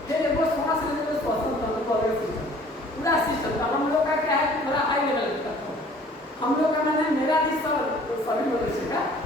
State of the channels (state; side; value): normal; both; correlation 0.53